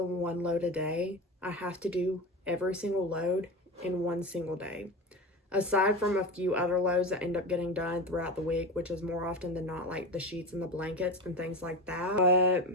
one load a day. I have to do every single load in one single day. Aside from a few other loads that end up getting done throughout the week, which is more often than not like the sheets and the blankets and things like that. But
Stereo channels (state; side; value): normal; both; correlation 0.25